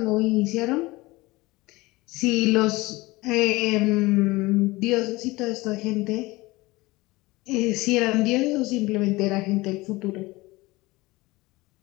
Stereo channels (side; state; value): right; quieter; 21.3 dB